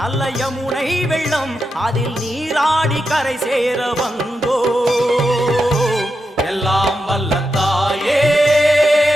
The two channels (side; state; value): both; normal; correlation 0.87